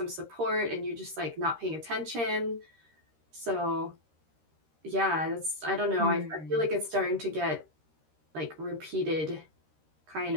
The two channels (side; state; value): left; late; 13 ms